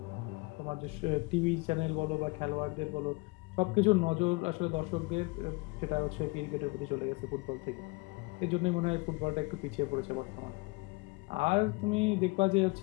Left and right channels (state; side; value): quieter; right; 26.6 dB